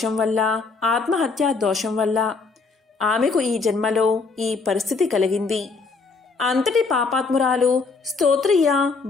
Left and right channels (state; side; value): quieter; right; 4.3 dB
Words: వల్ల, ఆత్మహత్యా దోషం వల్ల ఆమెకు ఈ జన్మలో ఈ పరిస్థితి కలిగింది. అంతటి పాపాత్మురాలు స్తోత్రియ